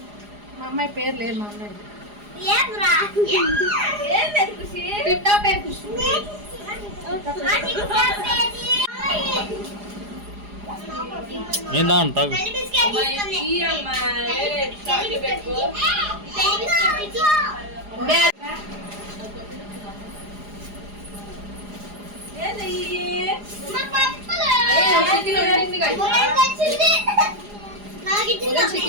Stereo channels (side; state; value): left; late; 4.9 ms